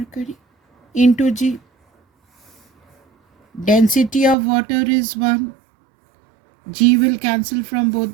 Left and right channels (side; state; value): left; drops out; at 4.4 s